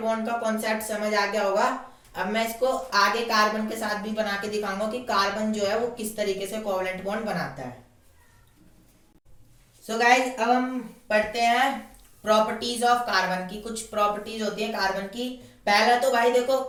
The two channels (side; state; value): both; identical; correlation 1.00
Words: का कॉन्सेप्ट समझ आ गया होगा. अब मैं इसको आगे कार्बन के साथ भी बना के दिखाऊंगा कि कार्बन जो है वो किस तरीके से कोवलेंट बॉन्ड बनाता है. सो गाइज अब हम पढ़ते हैं प्रॉपर्टीज ऑफ कार्बन की. कुछ प्रॉपर्टीज होती है कार्बन की. पहला तो भाई देखो